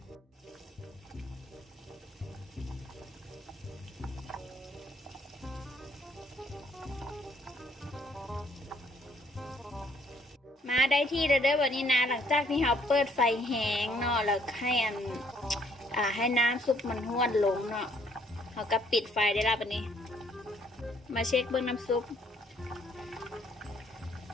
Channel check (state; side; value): normal; both; correlation 0.65